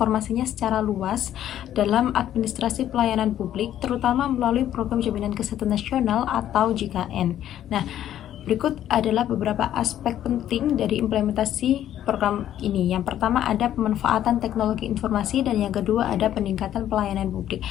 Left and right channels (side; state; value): right; quieter; 11.5 dB